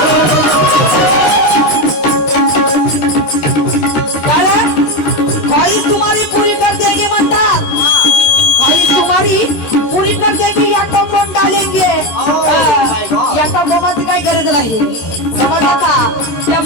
कारण खाली तुम्हारी पूरी कर देंगे म्हणतात खाली तुम्हारी पूरी कर देंगे या कंपाऊंड डालेंगे या कंपाऊंडाची काही गरज नाही समजलं का त्या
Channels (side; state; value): right; late; 13 ms